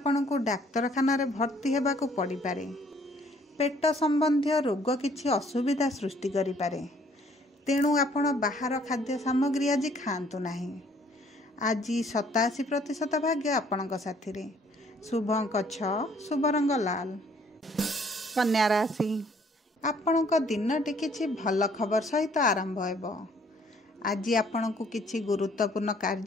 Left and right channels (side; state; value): both; normal; correlation 0.61